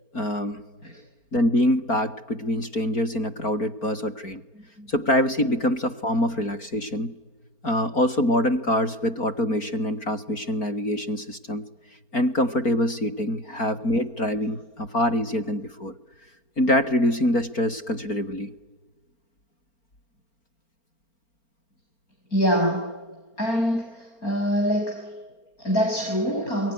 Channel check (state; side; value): late; right; 4.4 ms